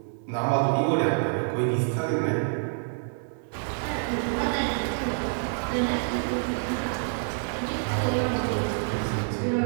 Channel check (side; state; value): left; silent; digital silence